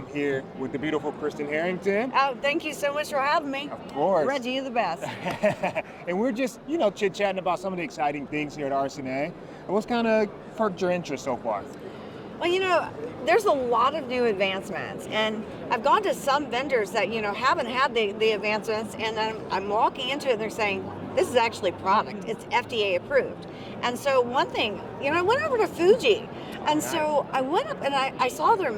here with the beautiful Kristan Harrington. Oh, thank you so much for having me. Of course. Reggie, you're the best. And we're just, chit-chatting about some of the exciting things here at RSNA. And what's kind of perked your interest so far? Well, there's a lot of new advancements, and I've gone to some vendors that, haven't had the advancements, and I'm walking into it and they're saying, this is actually product. It's FDA approved. And so one thing, I went over to Fuji, and so I went up and I saw their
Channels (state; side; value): identical; both; correlation 1.00